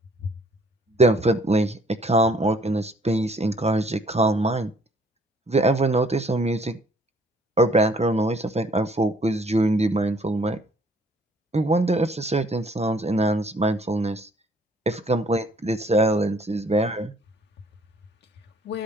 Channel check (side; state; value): both; normal; correlation 0.60